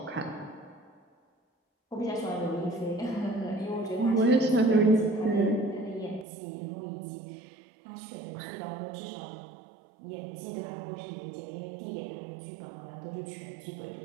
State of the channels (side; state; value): left; drops out; at 6.2 s